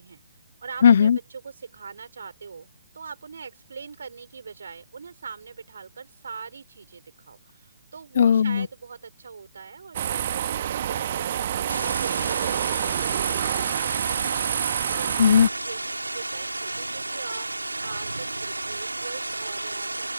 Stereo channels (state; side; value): inverted; both; correlation -0.73